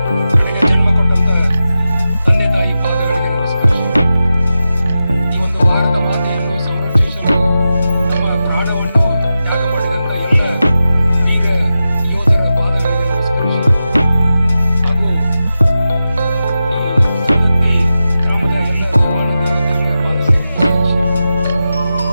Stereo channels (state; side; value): inverted; both; correlation -0.92